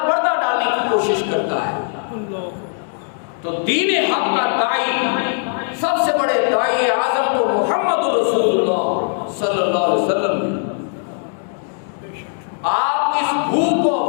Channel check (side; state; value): right; silent; 66 dB below the other